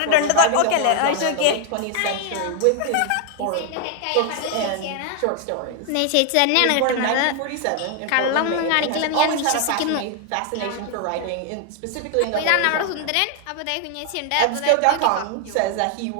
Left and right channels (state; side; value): different; both; correlation 0.00